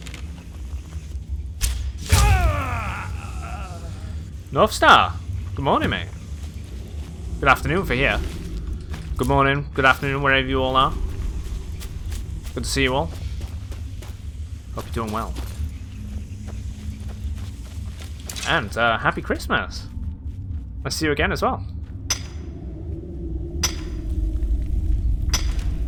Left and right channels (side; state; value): both; identical; correlation 1.00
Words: North Star. Good morning, mate. Good afternoon for here. Good morning, good afternoon, wherever you all are. Good to see you all. Hope you're doing well. And happy Christmas. I'll see you again as well.